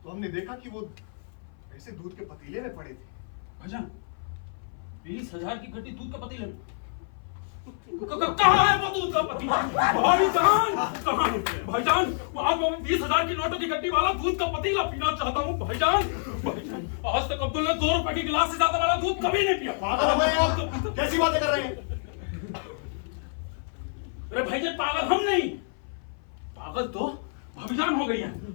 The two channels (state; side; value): silent; right; 57 dB below the other